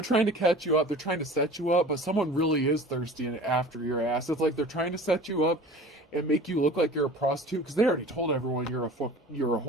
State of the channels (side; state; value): both; normal; correlation 0.41